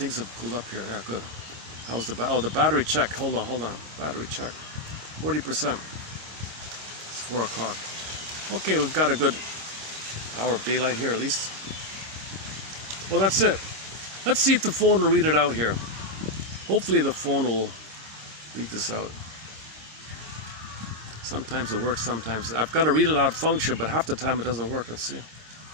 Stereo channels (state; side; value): late; left; 26 ms